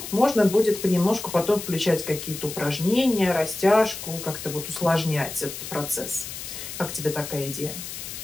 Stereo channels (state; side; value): noise; left; hiss, 9 dB below the sound